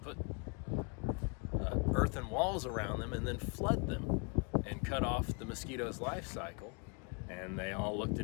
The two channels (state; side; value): quieter; right; 33.8 dB